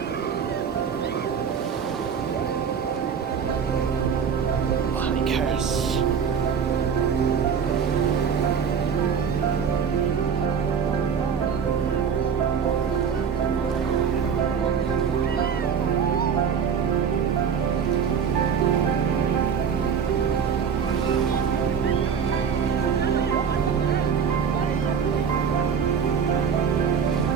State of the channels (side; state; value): left; quieter; 6.9 dB